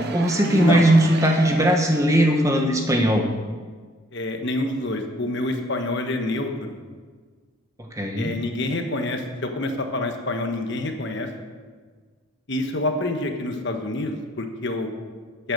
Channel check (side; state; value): both; normal; correlation 0.63